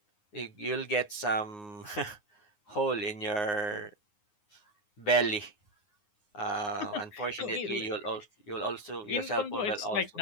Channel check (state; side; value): late; right; 9.6 ms